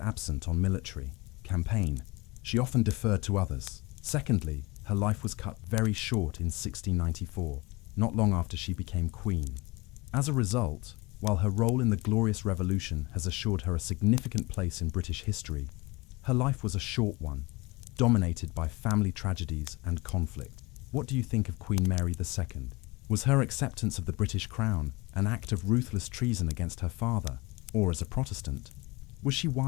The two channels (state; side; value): quieter; right; 24.1 dB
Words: on military campaign, she often deferred to others. Secondly, her life was cut very short in 1694, not long after she became queen. As a result, while her role in the Glorious Revolution has assured her a significant place in British history, her life was a short one, dominated by family tragedies and conflict. What do you think of Queen Mary II? Was her acceptance of the British crown an act of ruthless treason against her father, or as a Protestant? Was she